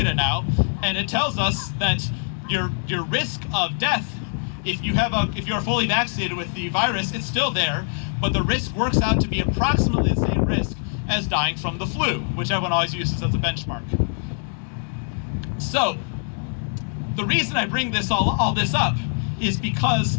now, and it tells us that your risk of death, if you're fully vaccinated with the virus, it's still there, but the risk works out to be approximately the same risk as dying from the flu, which everyone always uses as a benchmark. So, the reason I bring all this up is because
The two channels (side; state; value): right; silent; digital silence